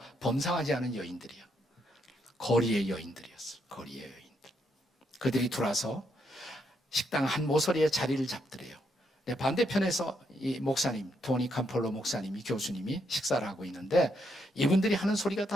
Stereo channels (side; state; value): both; normal; correlation 0.77